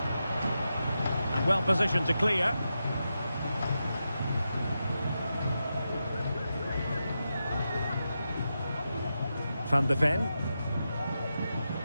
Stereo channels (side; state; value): both; inverted; correlation -0.88